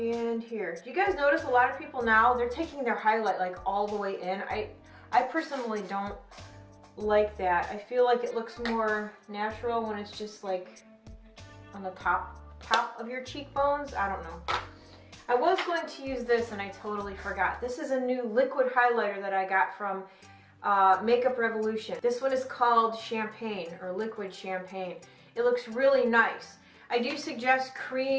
here. Do you guys notice a lot of people now, they're taking their highlight like all the way in? I personally don't like that. I feel like it looks more natural when it's just like on the top of your cheekbones. I don't know. I was going to use this and I totally forgot. This is a new liquid highlighter that I got from Makeup Revolution. This one is called Champagne, or Liquid Champagne. It looks really nice. I do suggest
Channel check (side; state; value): both; identical; correlation 1.00